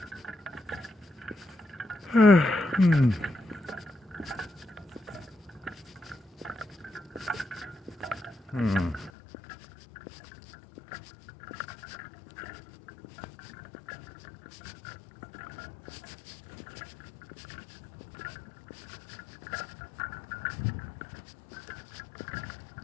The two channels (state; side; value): drops out; right; at 9.1 s